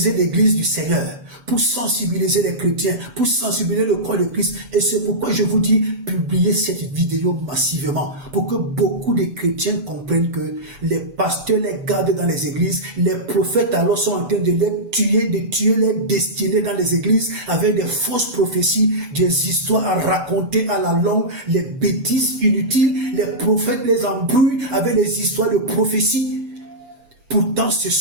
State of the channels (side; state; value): left; late; 8.0 ms